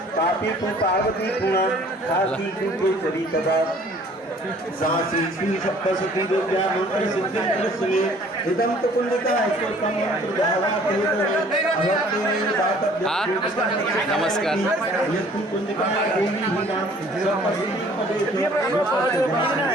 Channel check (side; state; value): both; normal; correlation 0.54